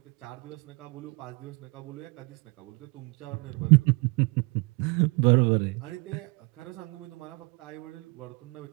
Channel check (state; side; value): quieter; left; 29.5 dB